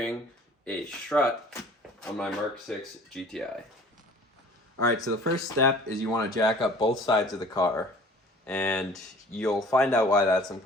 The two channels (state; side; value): normal; both; correlation 0.48